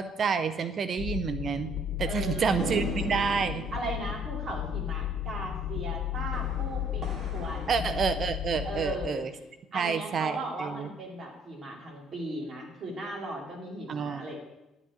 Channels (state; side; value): normal; both; correlation 0.61